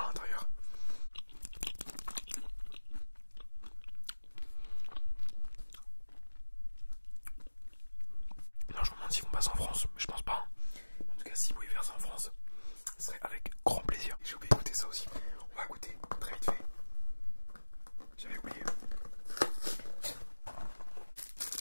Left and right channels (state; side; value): inverted; both; correlation -1.00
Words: à l'intérieur. Non, je me demande s'ils vont passer en France, mais je pense pas. En tout cas, si vous voulez faire ça en France, ce serait avec grand plaisir. J'ai oublié de goûter ça aussi. On va goûter très vite fait. J'avais oublié.